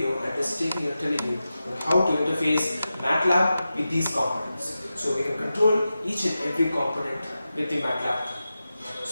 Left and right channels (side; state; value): both; inverted; correlation -0.92